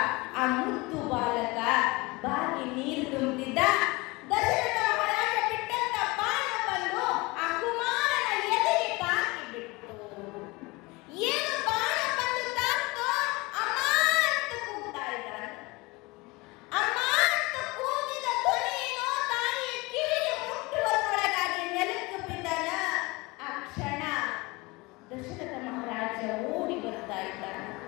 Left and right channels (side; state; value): right; quieter; 24.0 dB